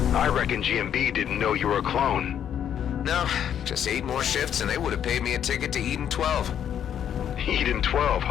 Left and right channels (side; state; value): right; quieter; 9.3 dB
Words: I reckon GMB didn't know you were a clone. No, just 8 more shifts and they would have paid me a ticket to Eden 12. Eden 12,